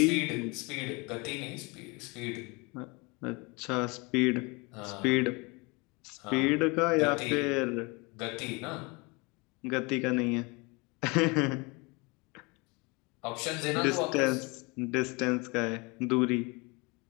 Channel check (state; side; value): quieter; right; 27.7 dB